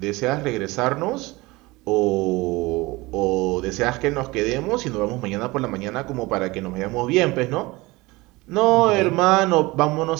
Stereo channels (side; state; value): left; quieter; 21.9 dB